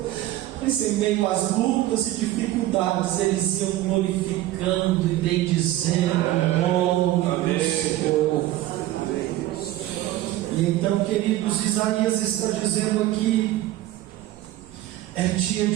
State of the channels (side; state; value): left; quieter; 15.1 dB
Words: mas em meio às lutas e dificuldades eles iam glorificando e bendizendo o nome do Senhor. E então, queridos, Isaías está dizendo aqui: é dia